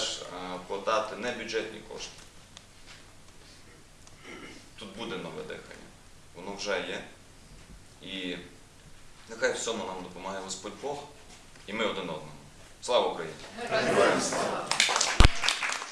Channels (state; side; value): identical; both; correlation 1.00